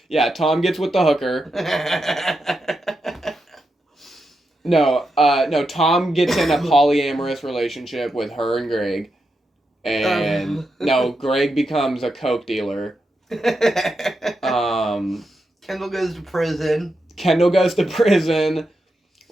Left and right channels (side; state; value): both; normal; correlation 0.86